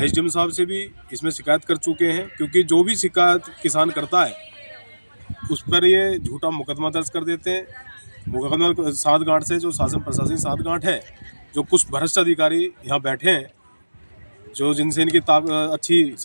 साहब से भी इसमें शिकायत कर चुके हैं। क्योंकि जो भी शिकायत किसान करता है उस पर ये झूठा मुकदमा दर्ज कर देते हैं। मुकदमा साठगांठ से, जो शासन प्रशासनिक साठगांठ है, जो कुछ भ्रष्ट अधिकारी यहाँ बैठे हैं, जो जिनसे इनकी अच्छी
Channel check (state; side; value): inverted; both; correlation -1.00